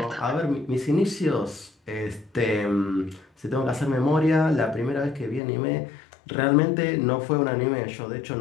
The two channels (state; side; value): drops out; right; at 5.4 s